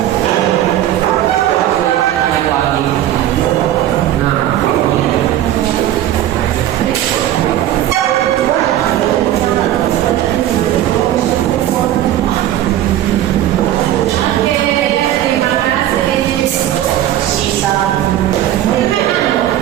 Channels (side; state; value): left; quieter; 12.6 dB